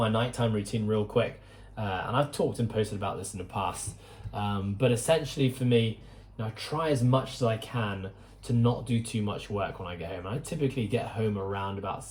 nighttime routine real quick. And I've talked and posted about this in the past. But essentially for me, I try as much as I can to not do too much work when I get home. I typically get home around about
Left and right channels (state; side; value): identical; both; correlation 1.00